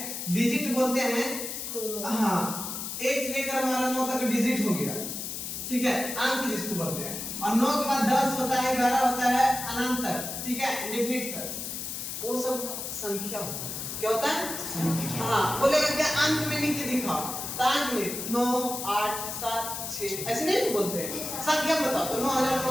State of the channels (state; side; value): noise; left; hiss, 6 dB below the sound